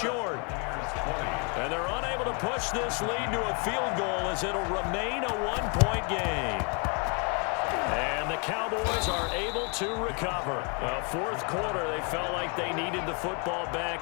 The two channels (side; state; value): right; quieter; 35.6 dB